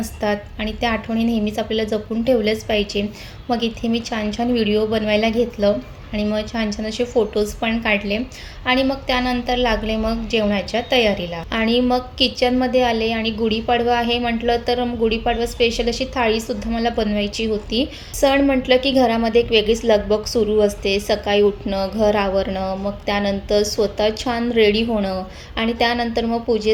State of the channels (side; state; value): both; identical; correlation 1.00